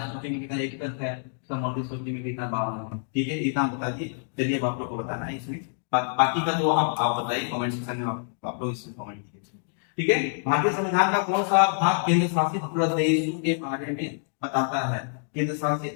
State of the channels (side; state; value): right; silent; digital silence